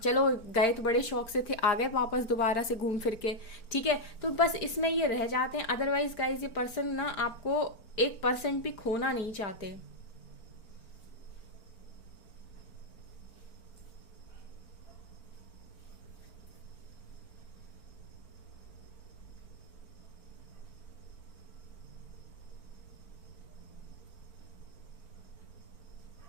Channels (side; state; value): right; late; 4.4 ms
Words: चलो गए तो बड़े शौक से थे, आ गए वापस दोबारा से घूम फिर के, ठीक है। तो बस इसमें ये रह जाते हैं। अदरवाइज गाइज ये पर्सन ना आपको 1% भी खोना नहीं चाहते।